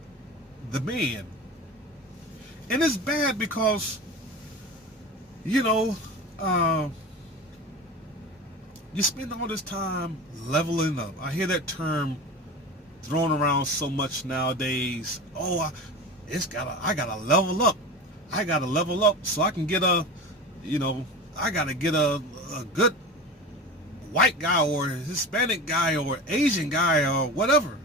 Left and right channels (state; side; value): normal; both; correlation 0.31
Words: the man. And it's bad because, you know, you spend all this time leveling up. I hear that term thrown around so much nowadays. Oh, I gotta level up. I gotta level up so I can get I gotta get a good white guy or Hispanic guy or Asian guy or whatever